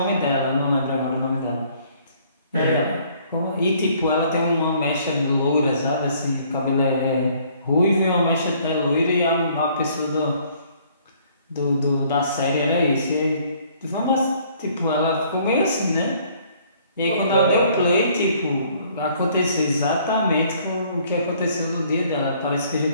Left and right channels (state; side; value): inverted; both; correlation -0.61